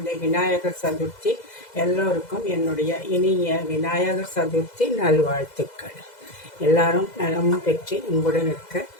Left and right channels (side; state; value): right; late; 2.0 ms